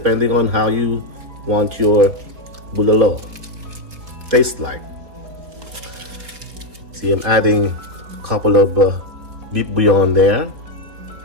on how you want your bulalo taste like. See, I'm adding a couple of beef bouillon there.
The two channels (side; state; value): left; late; 4.2 ms